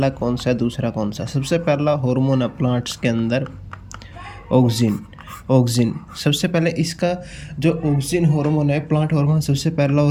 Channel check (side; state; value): both; identical; correlation 1.00